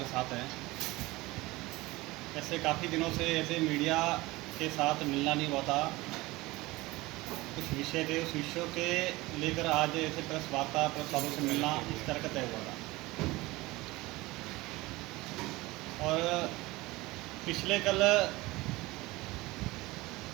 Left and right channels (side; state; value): left; quieter; 20.7 dB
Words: साथ हैं। ऐसे काफ़ी दिनों से ऐसे मीडिया के साथ मिलना नहीं हुआ था। कुछ विषय थे, उस विषयों के लेकर आज ऐसे प्रेस वार्ता प्रेस वालों से मिलना इस तरह का तय हुआ था। और पिछले कल